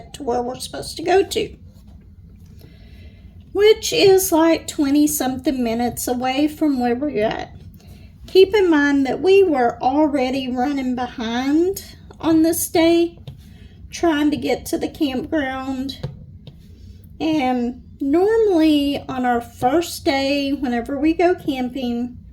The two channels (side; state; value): both; identical; correlation 1.00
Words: to where we're supposed to go to, which is like 20-something minutes away from where we're at. Keep in mind that we were already running behind on this day, trying to get to the campground. And normally on our first day, whenever we go camping,